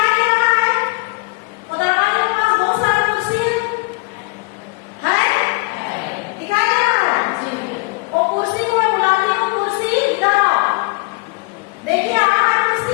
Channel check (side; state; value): right; quieter; 27.8 dB